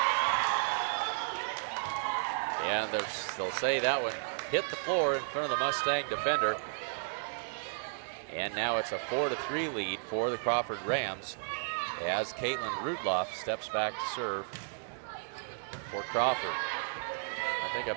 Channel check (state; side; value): silent; left; digital silence